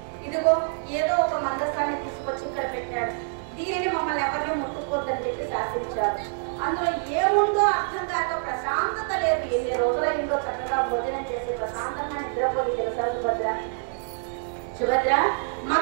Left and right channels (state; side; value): silent; left; digital silence